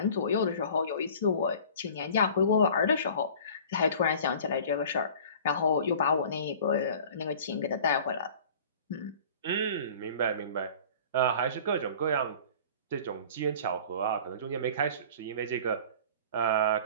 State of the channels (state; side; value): inverted; both; correlation -0.45